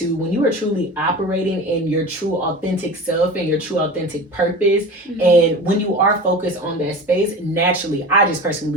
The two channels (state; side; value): normal; both; correlation 0.33